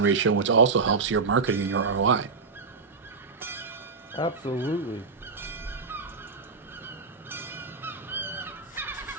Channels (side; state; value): left; quieter; 4.6 dB